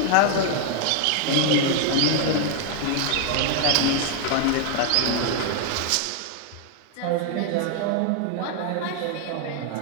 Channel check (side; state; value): both; different; correlation 0.00